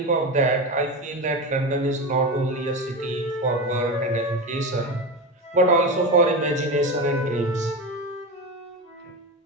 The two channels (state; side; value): normal; both; correlation 0.21